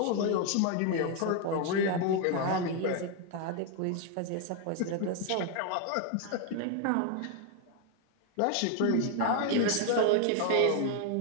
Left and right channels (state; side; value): different; both; correlation 0.01